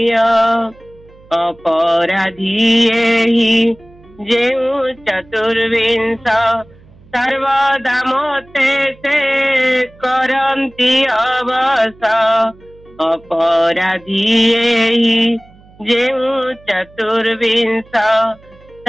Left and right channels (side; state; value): right; noise; hum, 26 dB below the sound